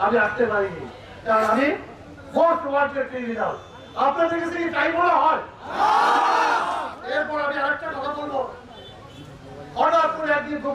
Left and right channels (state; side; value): identical; both; correlation 1.00